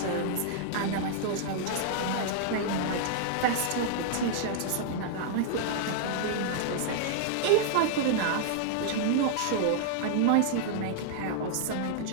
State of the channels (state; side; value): different; both; correlation -0.01